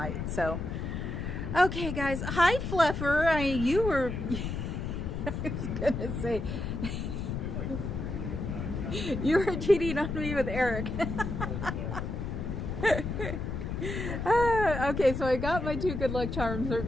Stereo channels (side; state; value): left; noise; rumble, 4 dB below the sound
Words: So, okay, guys. Hi, Fluffer. You were... I was going to say... You were cheating on me with Eric. Okay, so I got my 2 good luck charms right